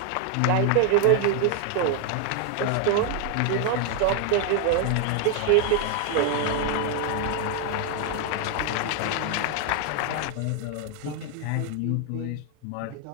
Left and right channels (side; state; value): both; different; correlation 0.00